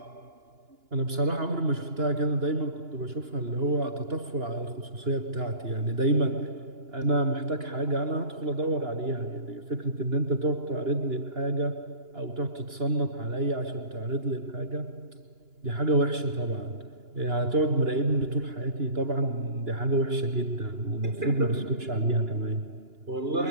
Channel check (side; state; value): left; late; 2.9 ms